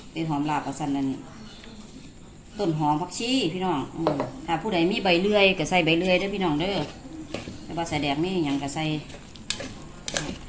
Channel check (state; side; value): identical; both; correlation 1.00